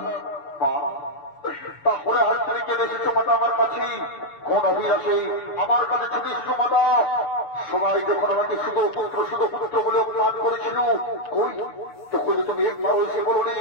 তারপরে হাত থেকে কেটে এসেছো মাতা আমার কাছে কোন অভিলাষে আমার কাছে ছুটে এসেছো মাতা সবাই যখন আমাকে শুধু পুত্র বলে অপমান করেছিল কই তখন তুমি একবার এসে বলো নি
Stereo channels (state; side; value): late; right; 7.0 ms